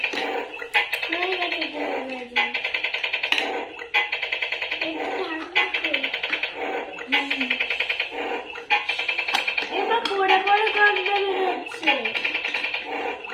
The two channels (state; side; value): identical; both; correlation 1.00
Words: হয়ে গেছে ডিম ভাজি। এবার পড়ে পড়ে গন্ধ বেরোচ্ছে।